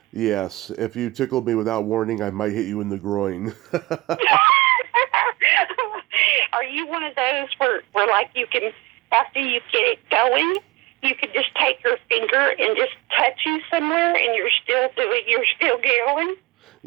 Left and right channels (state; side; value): quieter; left; 21.2 dB